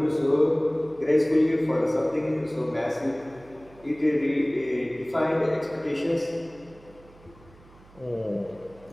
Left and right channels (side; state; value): right; noise; hum, 25 dB below the sound